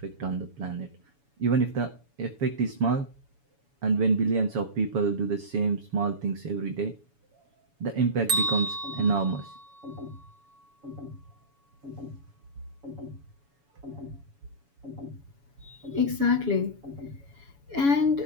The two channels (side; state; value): left; late; 7.1 ms